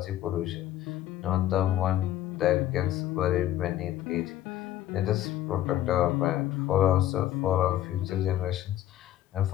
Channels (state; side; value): quieter; right; 12.8 dB